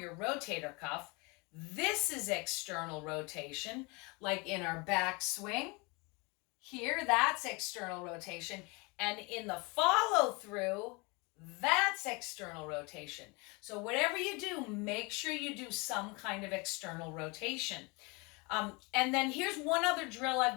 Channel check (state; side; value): quieter; right; 28.1 dB